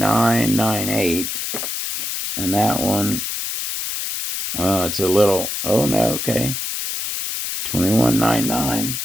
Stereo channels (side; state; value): left; noise; hiss, 4 dB below the sound